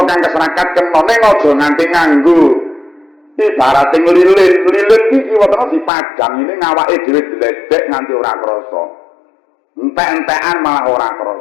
kang keserakat kena ning aja nganti nganggo ibarate lilin iki kiwatene dipadang ini ngawake dhewe diledek nganti ora krasa. Entek-entekan malah ora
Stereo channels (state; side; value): drops out; right; at 5.9 s